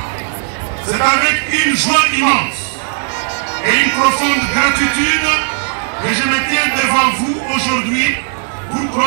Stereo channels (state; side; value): silent; left; digital silence